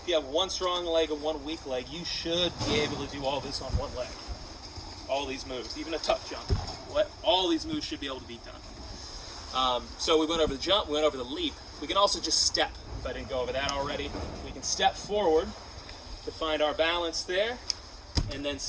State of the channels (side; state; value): both; identical; correlation 1.00